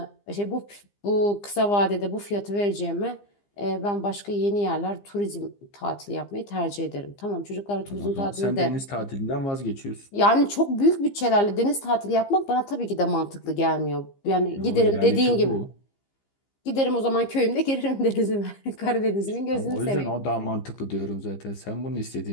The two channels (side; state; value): right; late; 15 ms